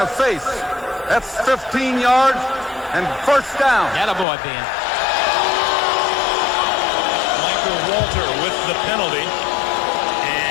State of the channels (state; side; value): drops out; right; at 4.2 s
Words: face. That's 15 yards and first down. Attaboy, Ben. Michael Walter with the penalty